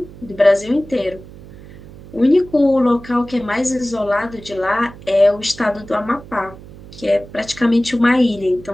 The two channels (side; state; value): right; noise; hum, 18 dB below the sound